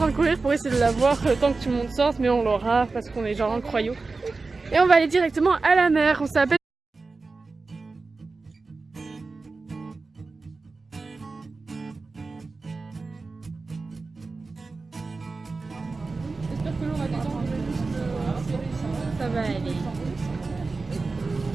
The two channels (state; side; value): quieter; left; 3.9 dB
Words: de courir pour essayer de la voir le temps que tout le monde sorte, mais on l'aura parce qu'on est genre incroyaux. Et on va aller directement à la mer, on s'appelle... J'espère que l'eau va détendre juste Ça va aller.